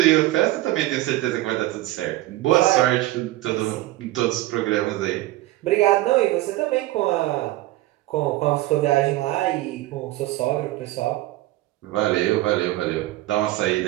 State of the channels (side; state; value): left; quieter; 17.1 dB